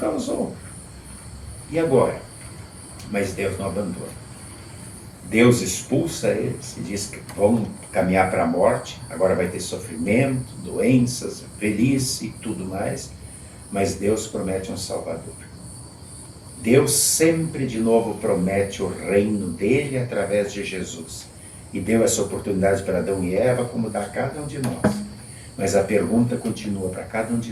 E agora? Mas Deus não abandona. Deus expulsa eles e diz que vão caminhar para a morte. Agora vai ter sofrimento, doenças, velhice e tudo mais. Mas Deus promete um Salvador. Deus sempre de novo promete o reino dele através de Jesus. E deu essa oportunidade para Adão e Eva, como dá a cada um de nós. Mas a pergunta continua para cada um de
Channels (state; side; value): identical; both; correlation 1.00